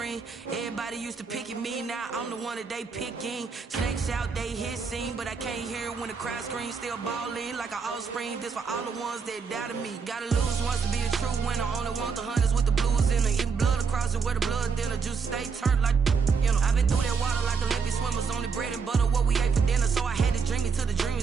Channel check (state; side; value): quieter; left; 5.6 dB